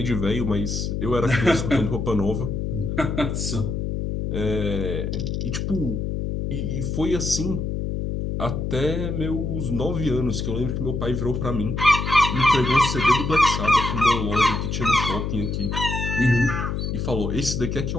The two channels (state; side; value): noise; left; hum, 2 dB below the sound